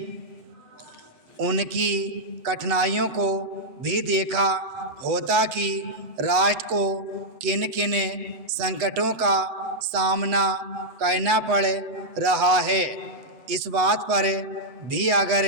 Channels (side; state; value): left; late; 8.2 ms